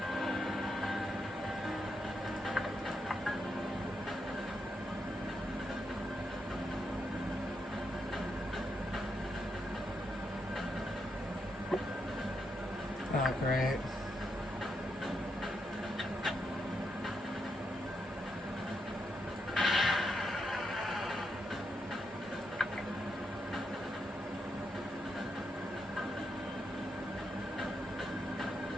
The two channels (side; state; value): both; normal; correlation 0.81